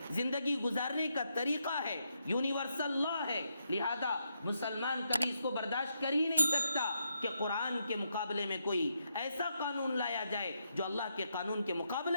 زندگی گزارنے کا طریقہ ہے، یونیورسل لا ہے. لہذا مسلمان کبھی اس کو برداشت کر ہی نہیں سکتا کہ قرآن کے مقابلے میں کوئی ایسا قانون لایا جائے جو اللہ کے قانون کے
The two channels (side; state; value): both; inverted; correlation -0.81